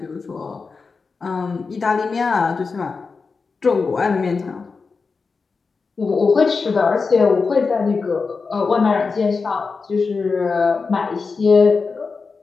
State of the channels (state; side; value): quieter; right; 4.6 dB